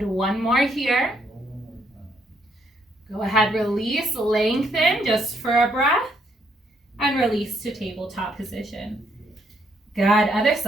one more here. Go ahead, release, lengthen just for a breath, and release to tabletop position. Good, other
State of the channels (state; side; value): normal; both; correlation 0.73